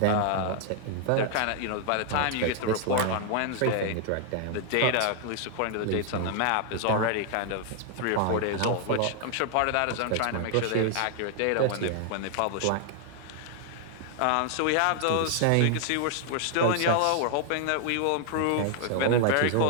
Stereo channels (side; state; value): both; different; correlation 0.00